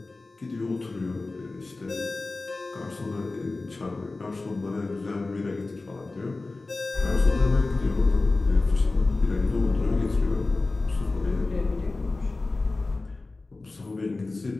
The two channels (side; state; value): right; quieter; 3.4 dB